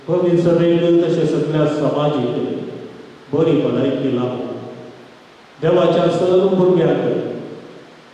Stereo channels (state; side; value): identical; both; correlation 1.00